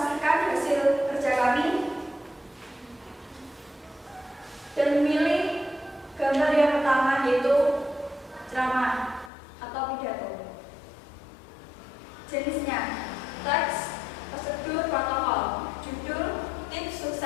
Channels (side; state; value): right; drops out; at 9.3 s